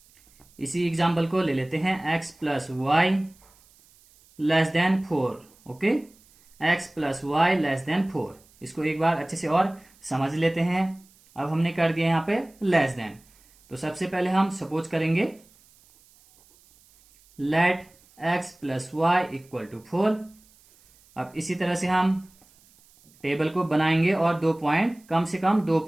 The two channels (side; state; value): right; noise; hiss, 29 dB below the sound